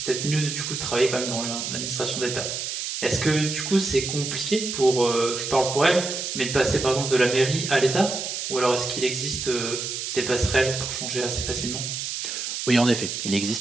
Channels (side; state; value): right; noise; hiss, 4 dB below the sound